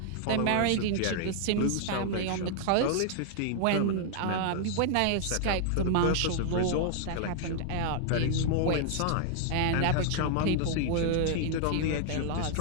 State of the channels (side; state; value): both; different; correlation 0.00